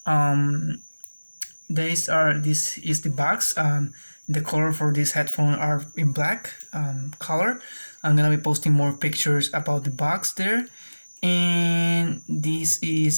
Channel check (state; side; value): inverted; both; correlation -1.00